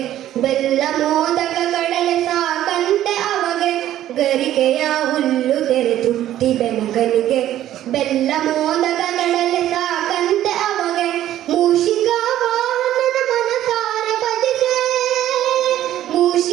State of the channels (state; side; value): quieter; left; 12.6 dB